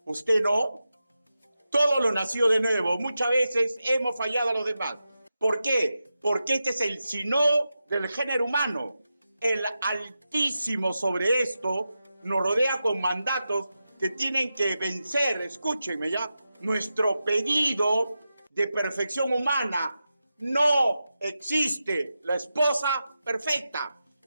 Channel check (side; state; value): both; inverted; correlation -0.91